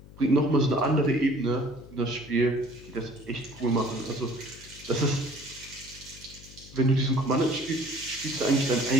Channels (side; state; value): left; noise; hum, 19 dB below the sound